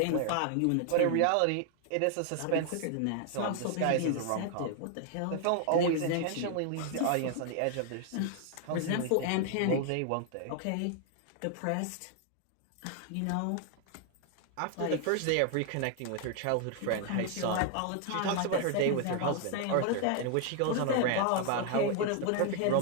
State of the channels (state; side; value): different; both; correlation 0.00